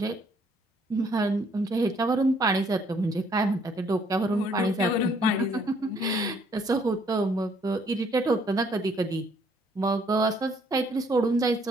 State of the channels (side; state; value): both; normal; correlation 0.65